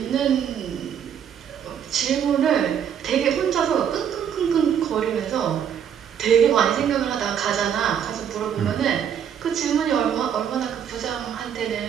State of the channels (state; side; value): quieter; left; 8.6 dB